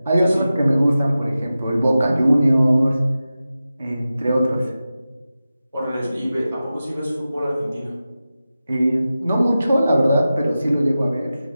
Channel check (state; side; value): inverted; both; correlation -0.94